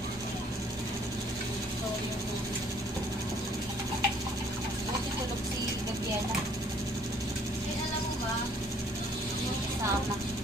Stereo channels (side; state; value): both; normal; correlation 0.60